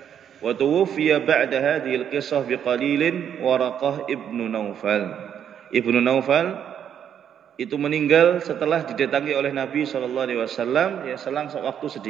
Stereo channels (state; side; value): quieter; left; 9.0 dB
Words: wa tuwfiya ba'da hadhil qissah biqalilin Waraqah ibnu Naufal. Ibnu Naufal itu meninggal setelah didatangi oleh Nabi SAW, ya selang waktu